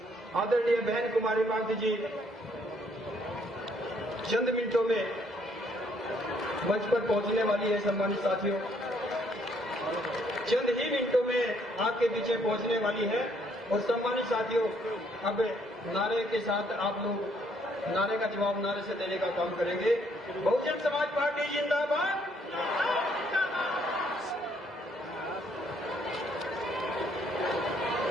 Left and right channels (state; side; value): normal; both; correlation 0.68